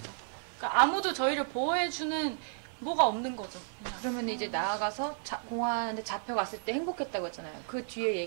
그러니까 아무도 저희를 보호해주는 뭐가 없는 거죠. 그러면 이제 나아가서 공안에 잡혀갔을 때 행복했다고 했잖아요. 그 뒤에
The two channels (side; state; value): left; silent; digital silence